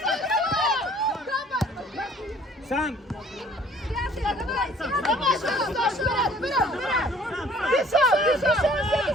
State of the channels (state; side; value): normal; both; correlation 0.55